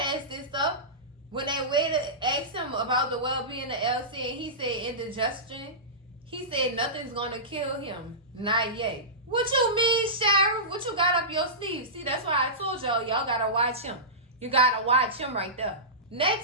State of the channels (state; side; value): normal; both; correlation -0.19